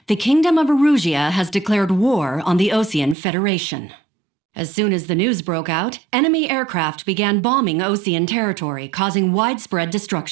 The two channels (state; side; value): drops out; left; at 3.2 s